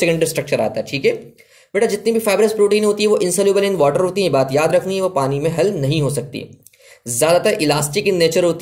स्ट्रक्चर आता है, ठीक है बेटा। जितनी भी फाइब्रस प्रोटीन होती है वो इनसोल्यूबल इन वाटर होती है, बात याद रखनी है, वो पानी में हल नहीं हो सकती। ज़्यादातर इलास्टिक इन नेचर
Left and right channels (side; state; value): both; identical; correlation 1.00